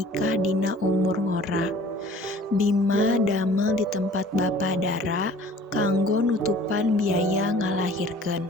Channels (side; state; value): both; normal; correlation 0.50